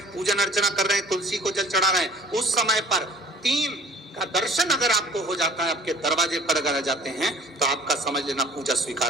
पूजन अर्चना कर रहे हैं, तुलसी को जल चढ़ा रहे हैं, उस समय पर 3 का दर्शन अगर आपको हो जाता है, आपके दरवाजे पर अगर आ जाते हैं तो आपका समझ लेना पूजा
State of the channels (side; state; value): both; normal; correlation 0.51